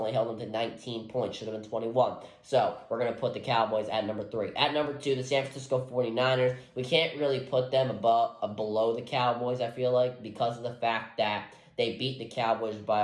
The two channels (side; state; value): both; identical; correlation 1.00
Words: held them to 19 points. Should have been 21. So, we're going to put the Cowboys at number 3. At number 2, the San Francisco 49ers. We can't really put them below the Cowboys, I feel like, because of the fact that they beat the Cowboys by